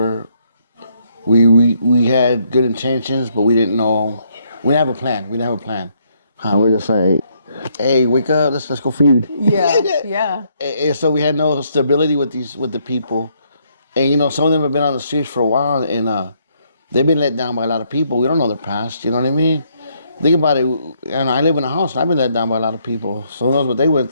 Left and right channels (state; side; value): inverted; both; correlation -0.72